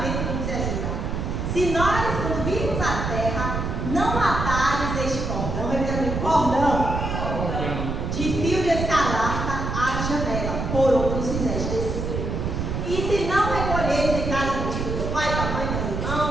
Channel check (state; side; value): noise; right; rumble, 2 dB below the sound